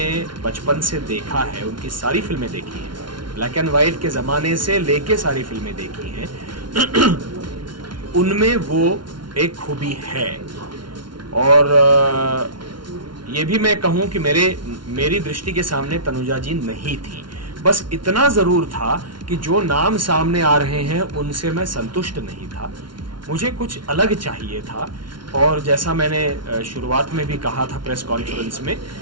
बचपन से देखा है, उनकी सारी फिल्में देखी हैं, ब्लैक एंड वाइट के ज़माने से लेके सारी फिल्में देखी हैं, उनमें वो एक खूबी है। और ये भी मैं कहूँ कि मेरी दृष्टि के सामने तनुजा जी नहीं थी। बस इतना ज़रूर था कि जो नाम सामने आ रहे हैं उनसे मैं संतुष्ट नहीं था, मुझे कुछ अलग चाहिए था। और जैसा मैंने शुरुआत में भी कहा था प्रेस कॉन्फ्रेंस में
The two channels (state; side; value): late; left; 0.72 ms